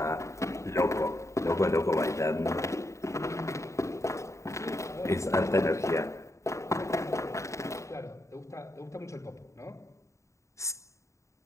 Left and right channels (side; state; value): right; late; 0.14 ms